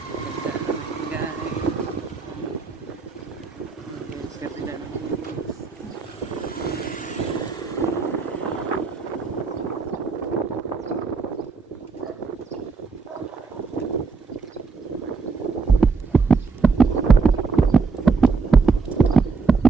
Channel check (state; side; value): quieter; left; 4.7 dB